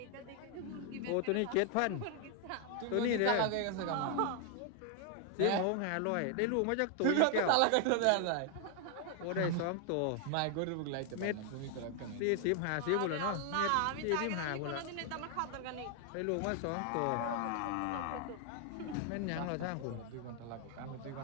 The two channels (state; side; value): different; both; correlation 0.00